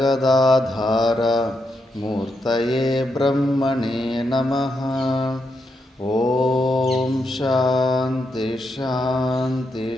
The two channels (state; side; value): normal; both; correlation 0.82